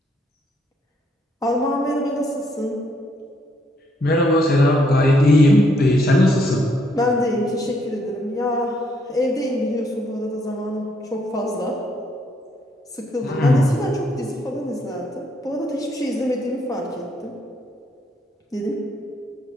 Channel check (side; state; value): both; normal; correlation 0.72